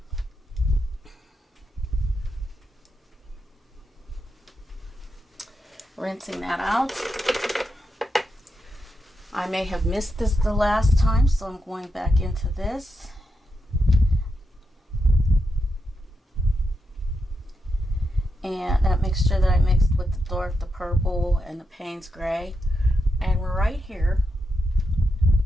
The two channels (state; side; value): normal; both; correlation 0.85